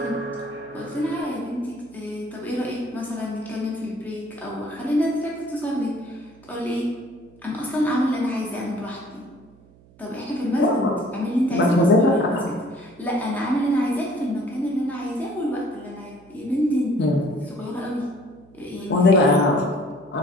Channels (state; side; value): noise; right; hum, 26 dB below the sound